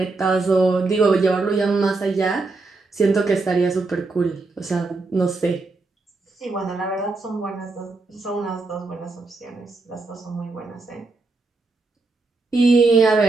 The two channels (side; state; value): left; quieter; 3.6 dB